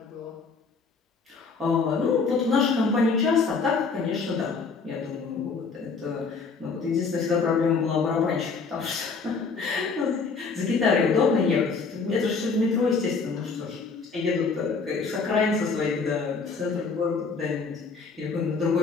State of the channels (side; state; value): right; quieter; 4.7 dB